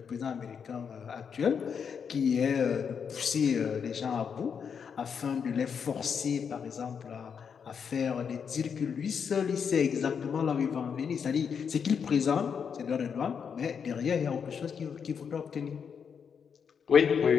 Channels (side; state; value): right; quieter; 6.8 dB